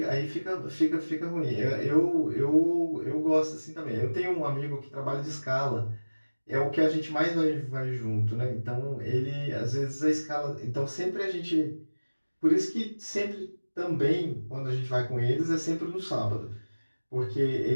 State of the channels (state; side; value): inverted; both; correlation -1.00